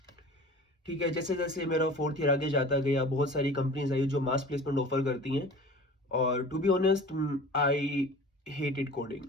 ठीक है, जैसे जैसे मेरा फोर्थ ईयर आगे जाता गया, बहुत सारी कंपनीज आई जो मास प्लेसमेंट ऑफर करती हैं, और to be honest I hated coding.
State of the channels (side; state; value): both; normal; correlation 0.41